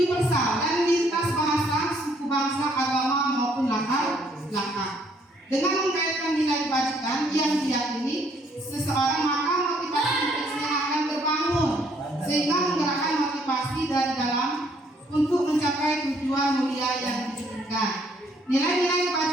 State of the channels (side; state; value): both; normal; correlation 0.66